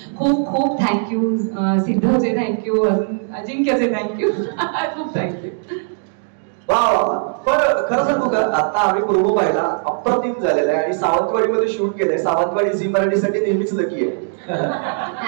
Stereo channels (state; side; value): silent; left; digital silence